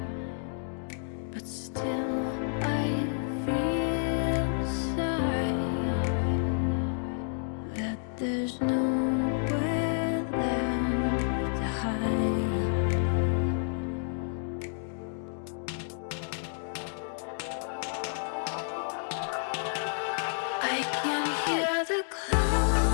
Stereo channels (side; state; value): right; silent; digital silence